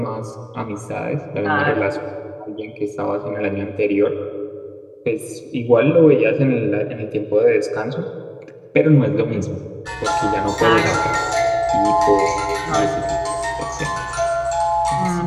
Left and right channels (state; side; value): identical; both; correlation 1.00